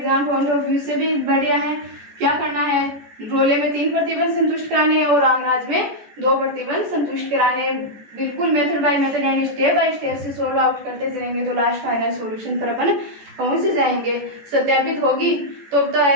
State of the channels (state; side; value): late; left; 14 ms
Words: पॉइंट ऑफ व्यू से भी बढ़िया है। क्या करना है, रोले में 3 प्रतिबंध संतुष्ट कराने और लाग्रांज में 2 प्रतिबंध संतुष्ट कराने। बिल्कुल मेथड बाय मेथड यानी स्टेप बाय स्टेप से सोल्व आउट करते चलेंगे तो लास्ट फाइनल सॉल्यूशन पर अपन पहुंच जाएंगे। सत्यापित होगी तो